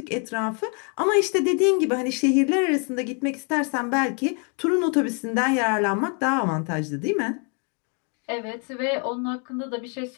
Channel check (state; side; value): quieter; right; 37.4 dB